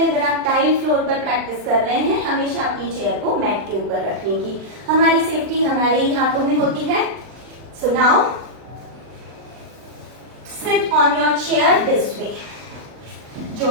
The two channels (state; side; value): late; left; 39 ms